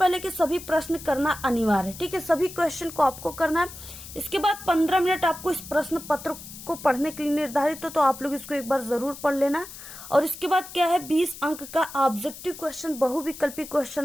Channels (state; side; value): noise; left; hiss, 14 dB below the sound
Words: कि सभी प्रश्न करना अनिवार्य है। ठीक है, सभी क्वेश्चन को आपको करना है। इसके बाद 15 मिनट आपको इस प्रश्न पत्र को पढ़ने के लिए निर्धारित हो, तो आप लोग इसको एक बार जरूर पढ़ लेना। और इसके बाद क्या है, 20 अंक का ऑब्जेक्टिव क्वेश्चन, बहुविकल्पी